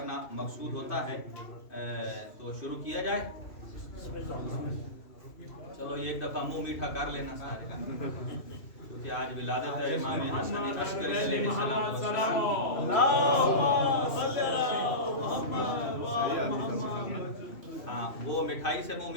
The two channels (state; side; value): late; right; 2.6 ms